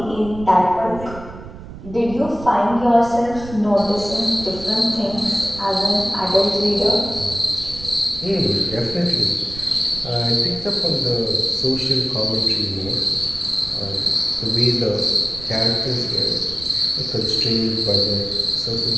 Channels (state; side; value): noise; right; rumble, 14 dB below the sound